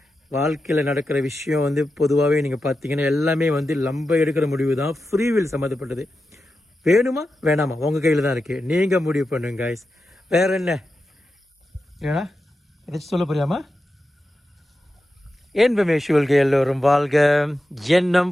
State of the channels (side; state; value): both; normal; correlation 0.90